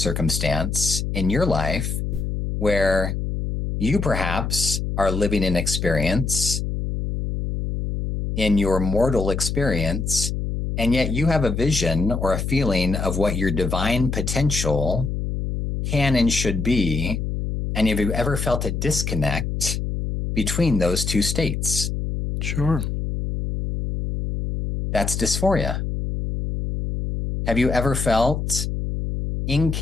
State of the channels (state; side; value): noise; left; hum, 2 dB below the sound